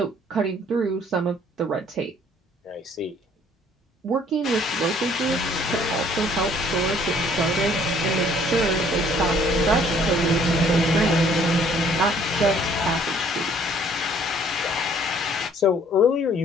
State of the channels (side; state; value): both; normal; correlation 0.59